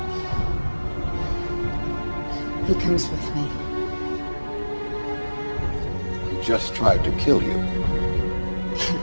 He comes with me. He just tried to kill you.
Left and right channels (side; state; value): both; inverted; correlation -1.00